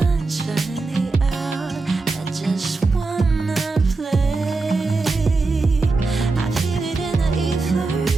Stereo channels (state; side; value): quieter; left; 3.7 dB